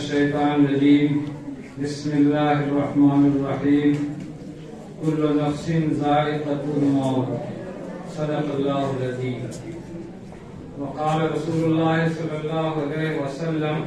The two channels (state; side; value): identical; both; correlation 1.00